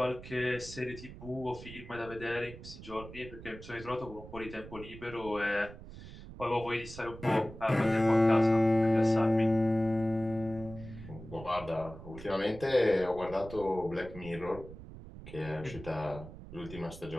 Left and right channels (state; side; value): noise; right; rumble, 14 dB below the sound